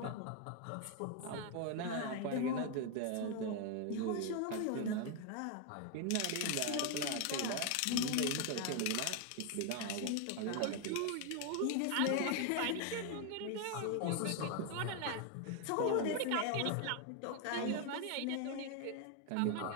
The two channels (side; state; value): both; different; correlation 0.01